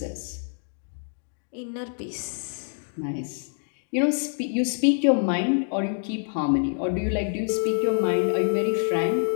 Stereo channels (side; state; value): right; silent; 61 dB below the other